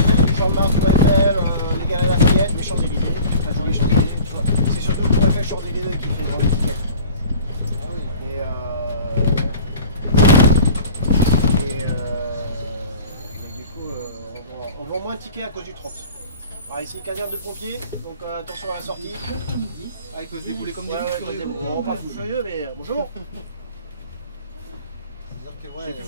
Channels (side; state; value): both; inverted; correlation -0.43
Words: tu chantes Mars, Tour Eiffel, les gars à Lafayette, les Champs-Élysées, enfin je dis les Champs-Élysées, c'est surtout Tour Eiffel, Champs-Élysées qui fait vendre les tickets. Ah oui. Mais du coup, on vend moins de tickets à cause du 30. Alors ici, caserne de pompiers, donc attention à la sortie. Avec se débouler comme des Ouais, fous furieux. on part fou furieux, mais bonjour. C'est-à-dire que Vous ouais,